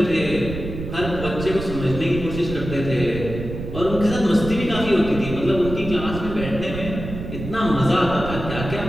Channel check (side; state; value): right; noise; rumble, 8 dB below the sound